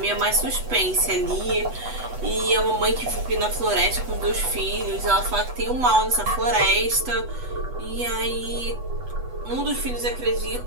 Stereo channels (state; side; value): late; left; 8.1 ms